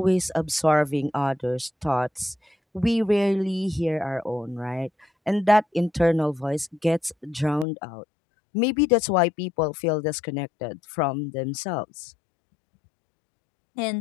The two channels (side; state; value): right; drops out; at 7.7 s